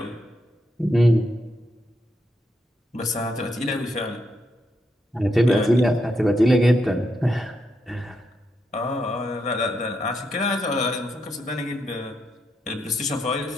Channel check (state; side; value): normal; both; correlation 0.81